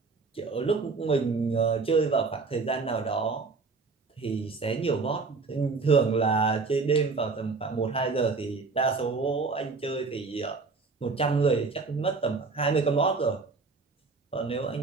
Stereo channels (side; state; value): left; quieter; 4.3 dB